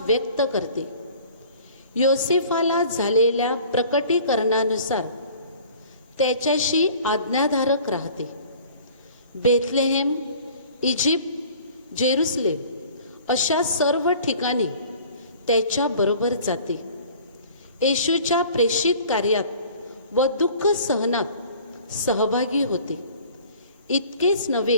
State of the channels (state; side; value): inverted; both; correlation -0.48